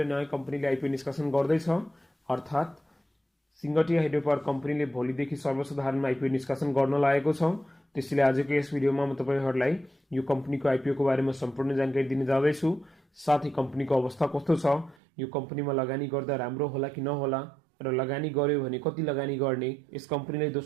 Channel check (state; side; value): drops out; left; at 15.0 s